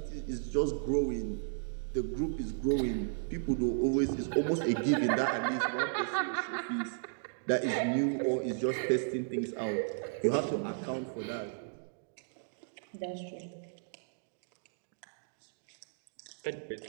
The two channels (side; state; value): left; silent; digital silence